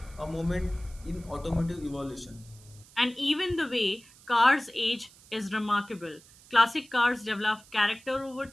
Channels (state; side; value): noise; right; hiss, 24 dB below the sound